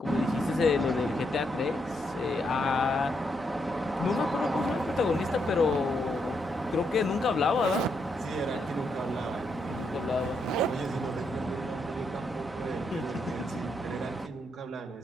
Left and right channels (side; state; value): both; normal; correlation 0.79